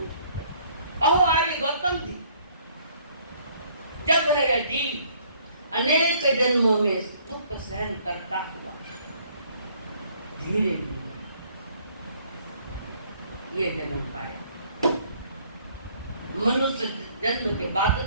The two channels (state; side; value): inverted; both; correlation -0.61